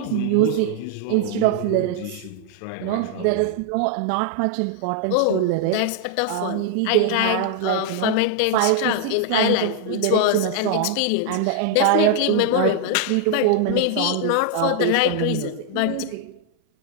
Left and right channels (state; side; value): different; both; correlation 0.00